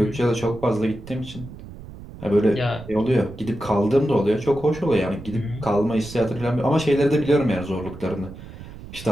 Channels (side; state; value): right; noise; rumble, 15 dB below the sound